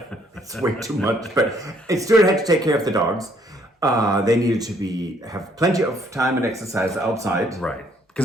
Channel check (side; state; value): both; normal; correlation 0.66